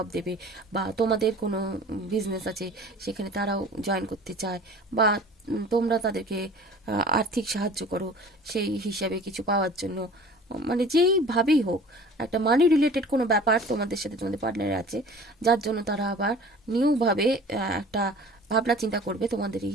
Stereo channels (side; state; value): both; normal; correlation 0.44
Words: দেবে, বা তোমাদের কোনো বিজনেস আছে সেখানে তারাও জয়েন করতে চায়, বা তোমরা তাদেরকে আর্থিক সাহায্য করো সেই হিসাবে কিছু পাওয়ার জন্য, মানে যেইভাবেই হোক একটা মানি রিলেটেড কোনো ব্যাপার তোমাদের সাথে তোমাদের পার্টনারের আছে, যার জন্য তারা আবার নিউভাবে একটা ভাবনা চিন্তা করবে তোমাদের